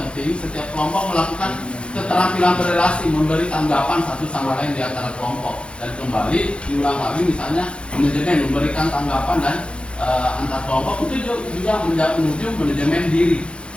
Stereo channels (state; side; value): late; right; 0.057 ms